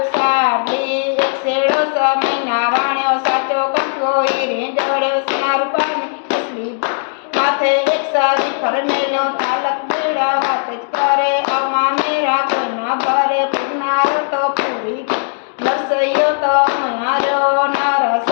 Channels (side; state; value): right; silent; digital silence